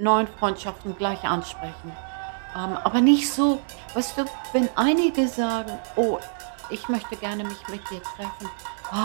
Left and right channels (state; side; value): silent; left; digital silence